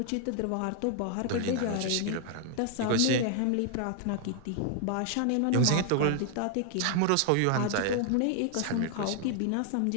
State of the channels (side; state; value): both; different; correlation 0.00